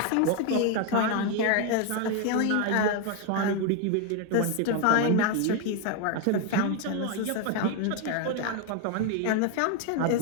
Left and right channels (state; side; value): different; both; correlation 0.01